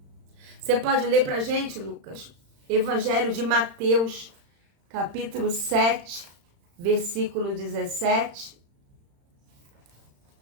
Você pode ler pra gente, Lucas? Evangelho de Mateus, capítulo 7, versículo 17.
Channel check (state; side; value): late; left; 35 ms